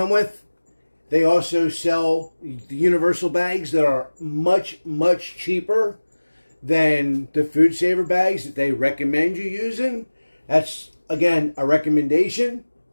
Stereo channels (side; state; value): both; inverted; correlation -1.00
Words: with, they also sell the universal bags that are much, much cheaper than the Food Saver bags that they recommend you using. That's, again, a recommendation.